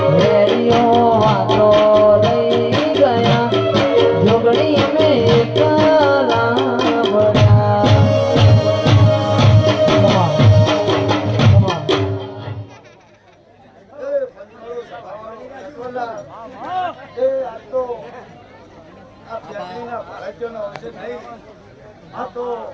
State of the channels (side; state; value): both; identical; correlation 1.00